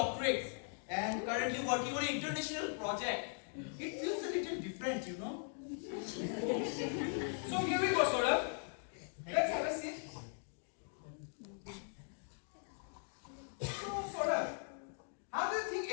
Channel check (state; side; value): silent; right; 51 dB below the other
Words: and currently working on an international project, it feels a little different, you know. So here we go, Saurabh. Let's have a seat. So, Saurabh, how do you think